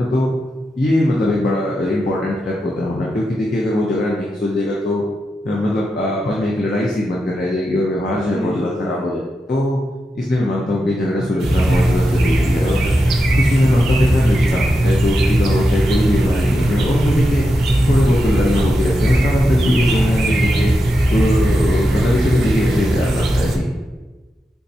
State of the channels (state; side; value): normal; both; correlation 0.88